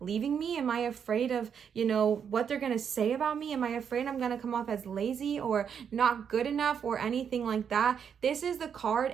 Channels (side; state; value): left; quieter; 7.5 dB